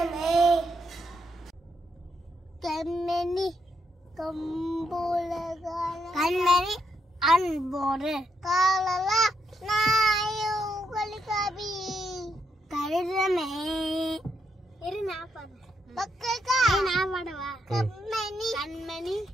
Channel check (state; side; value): normal; both; correlation 0.79